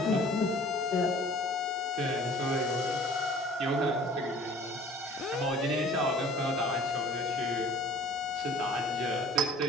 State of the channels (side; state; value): both; normal; correlation 0.49